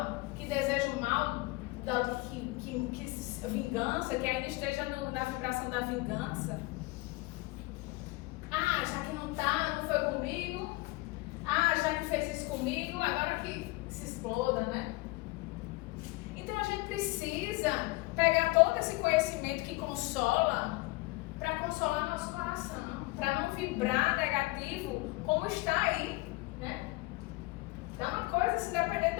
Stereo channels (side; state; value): right; quieter; 22.1 dB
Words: que deseja o mal, que vingança, que ainda esteja na vibração da vingança? Ah, já que não foi comigo, já que fez isso comigo, agora que se exploda, né? Então a gente precisa pegar todo esse conhecimento que consola para consolar nosso coração, para não vibrar negativo como está aí, né? Então uma coisa, se depender